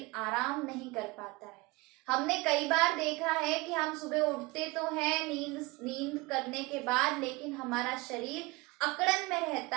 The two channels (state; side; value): quieter; left; 23.7 dB